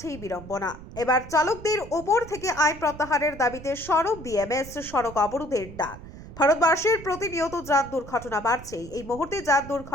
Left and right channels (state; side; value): noise; right; rumble, 15 dB below the sound